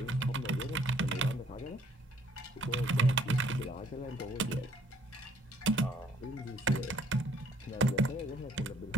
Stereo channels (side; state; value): both; normal; correlation 0.62